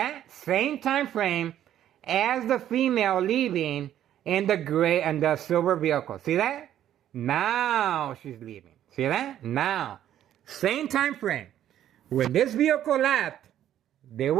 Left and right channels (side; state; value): left; quieter; 11.3 dB